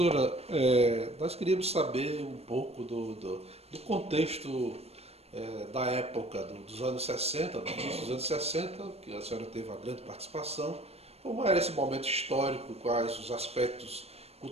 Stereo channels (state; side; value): late; left; 0.30 ms